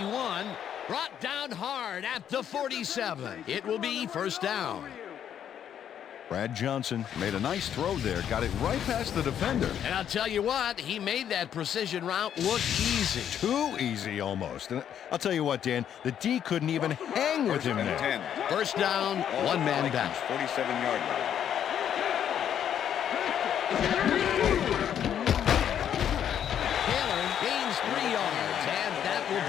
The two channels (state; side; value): quieter; right; 9.5 dB